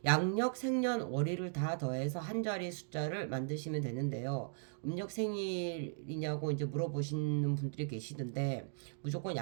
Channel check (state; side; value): silent; left; digital silence